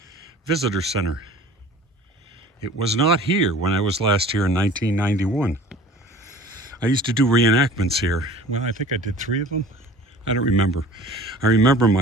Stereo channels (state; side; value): normal; both; correlation 0.45